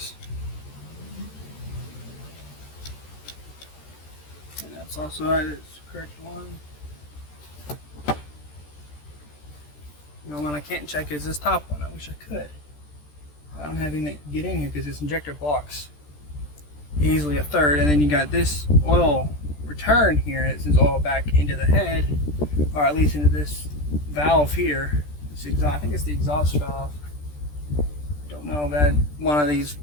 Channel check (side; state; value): right; late; 13 ms